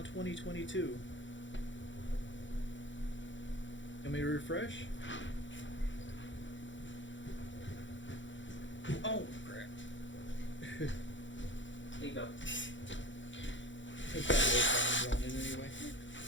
2022. Let me refresh. Oh crap! There you go. It's got no sound on it anyway.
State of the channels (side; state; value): right; late; 0.55 ms